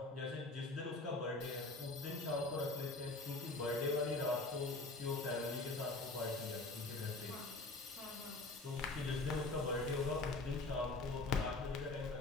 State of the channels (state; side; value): quieter; right; 3.2 dB